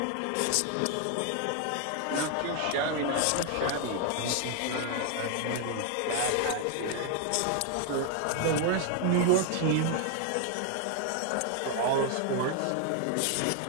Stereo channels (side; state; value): both; different; correlation 0.00